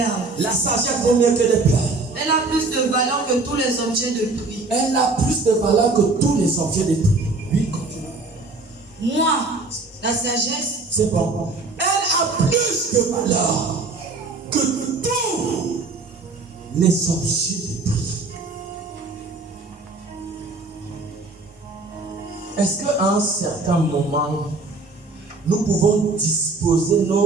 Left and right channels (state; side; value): quieter; left; 3.6 dB